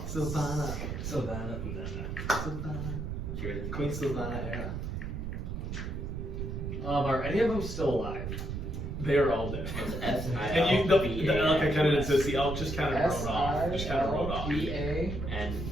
Sylvanas. Silvana. Cheers. Queen Sylvana era. Are any of them still alive? They are all dead. It's And you, the elk I kind of did this. The elk just kind of rode off. S-I-L-V-A. Just kind of rode off. and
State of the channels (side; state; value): right; noise; rumble, 5 dB below the sound